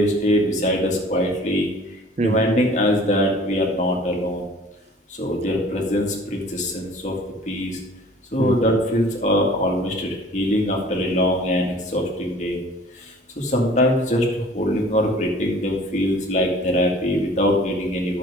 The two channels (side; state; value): both; normal; correlation 0.49